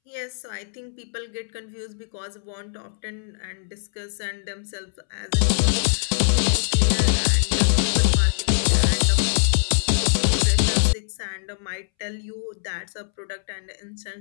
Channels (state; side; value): silent; right; 63 dB below the other